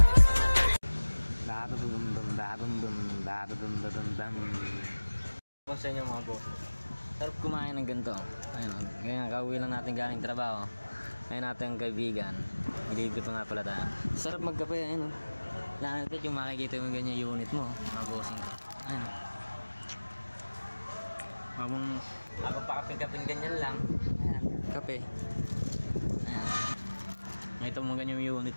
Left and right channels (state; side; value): inverted; both; correlation -1.00